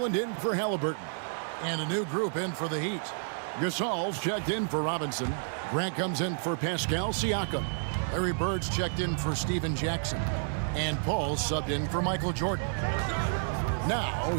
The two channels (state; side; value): silent; left; digital silence